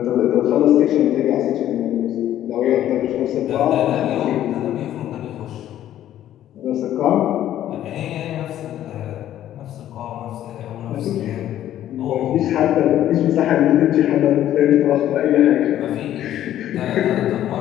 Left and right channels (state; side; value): quieter; right; 12.1 dB